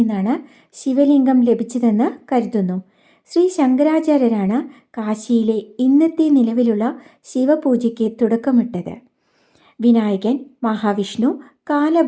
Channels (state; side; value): identical; both; correlation 1.00